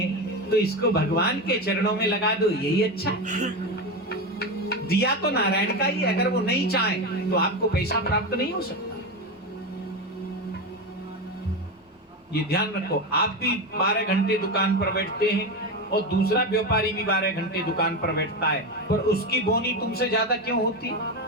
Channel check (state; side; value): normal; both; correlation 0.17